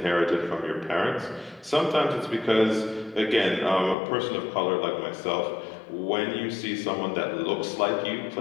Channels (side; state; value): right; drops out; at 4.0 s